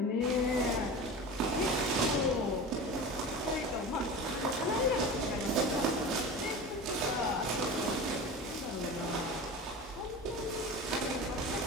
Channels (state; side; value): normal; both; correlation 0.31